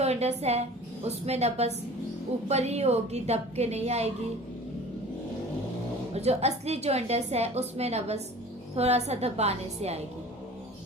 है उसमें नब्ज ऊपर ही होगी, दब के नहीं आएगी, और जो असली जॉइंटिस है उसमें नब्ज थोड़ा सा दबाने से आएगी।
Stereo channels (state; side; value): normal; both; correlation 0.43